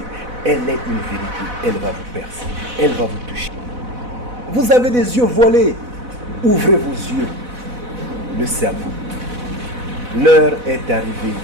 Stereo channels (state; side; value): late; left; 4.0 ms